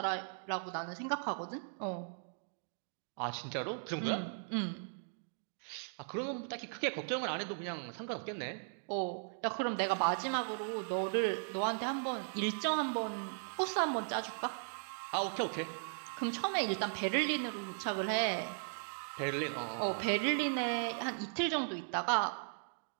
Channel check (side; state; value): left; silent; digital silence